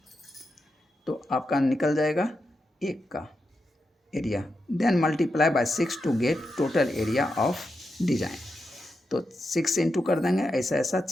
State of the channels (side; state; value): both; normal; correlation 0.87